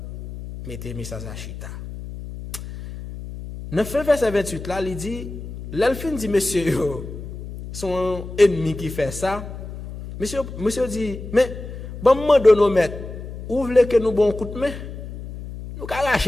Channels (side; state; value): left; noise; hum, 11 dB below the sound